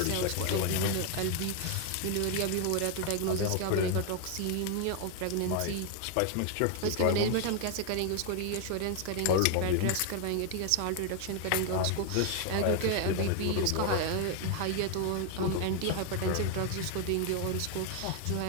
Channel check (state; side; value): different; both; correlation 0.00